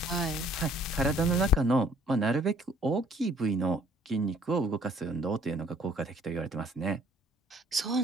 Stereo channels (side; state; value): both; normal; correlation 0.59